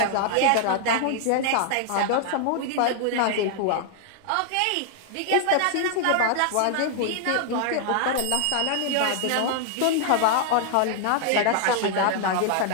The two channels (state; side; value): different; both; correlation 0.00